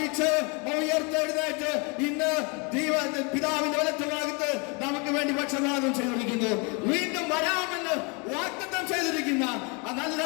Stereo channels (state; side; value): quieter; right; 31.9 dB